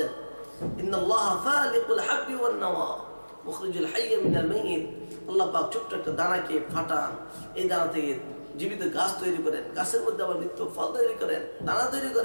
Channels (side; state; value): both; inverted; correlation -1.00